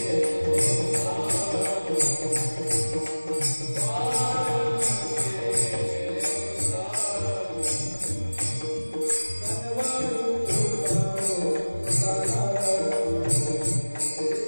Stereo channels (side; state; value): both; inverted; correlation -1.00